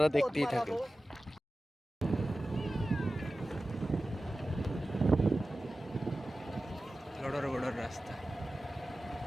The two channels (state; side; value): normal; both; correlation 0.95